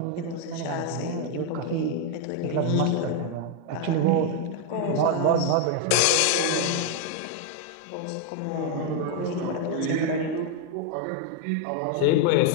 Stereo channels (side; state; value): both; different; correlation 0.01